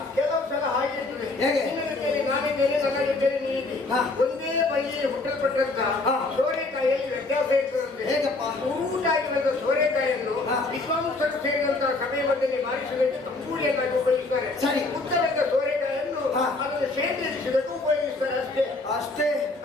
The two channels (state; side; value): quieter; right; 3.2 dB